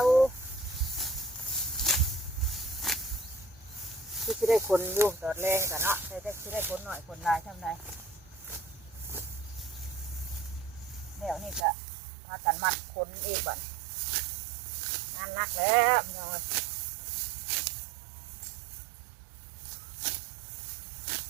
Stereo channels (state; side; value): drops out; left; at 11.7 s